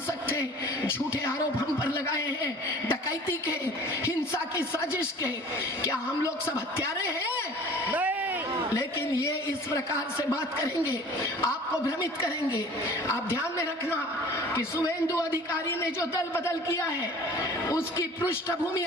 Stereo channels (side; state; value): both; normal; correlation 0.45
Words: थे, झूठे आरोप हम पर लगाए हैं डकैती के, हिंसा की साजिश के। क्या हम लोग सब हत्यारे हैं? नहीं। लेकिन ये इस प्रकार से बात करेंगे, आपको भ्रमित करेंगे। आप ध्यान में रखना कि शुभेंदु अधिकारी ने जो दल बदल किया है उसकी पृष्ठभूमि